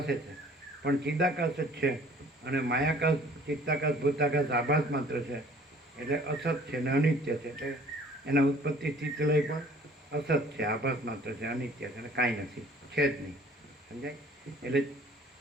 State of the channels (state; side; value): normal; both; correlation 0.53